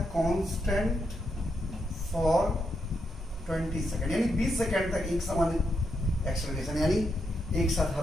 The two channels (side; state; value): both; normal; correlation 0.82